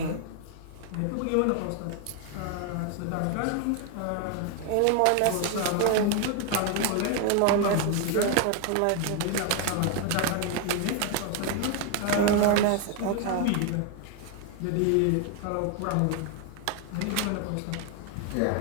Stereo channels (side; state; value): both; different; correlation 0.01